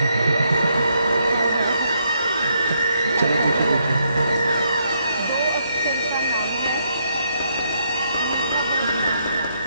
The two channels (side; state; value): both; inverted; correlation -0.75